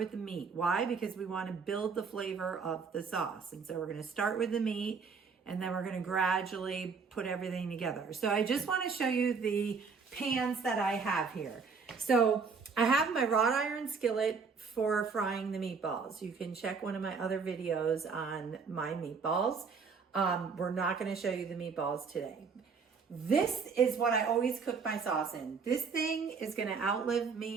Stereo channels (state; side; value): quieter; left; 5.3 dB